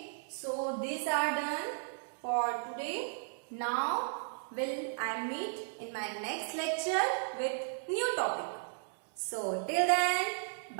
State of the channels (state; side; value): silent; left; digital silence